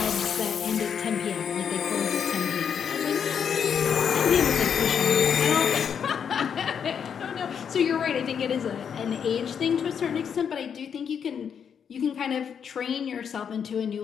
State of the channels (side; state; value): right; quieter; 7.5 dB